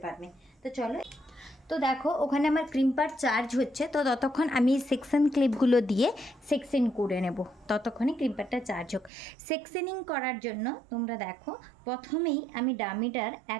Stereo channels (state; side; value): drops out; left; at 9.1 s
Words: পারবে। তো চলো, তো দেখো ওখানে আমার ক্রিম্পার চার্জ হচ্ছে, তো ততক্ষণ আমি সেকশন ক্লিপগুলো দিয়ে সেকশন করে নেব, ততক্ষণে ক্রিম্পারটা চার্জ হোক। সেকশনিং করার জন্য তোমরা দেখো প্রথমেই আমি ডামিটার